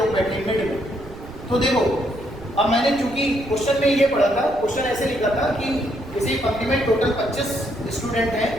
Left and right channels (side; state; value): right; noise; rumble, 17 dB below the sound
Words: बैठे हैं मिड में। तो देखो, अब मैंने चूंकि क्वेश्चन में ये पढ़ा था, क्वेश्चन ऐसे लिखा था कि किसी पंक्ति में टोटल 25 स्टूडेंट हैं,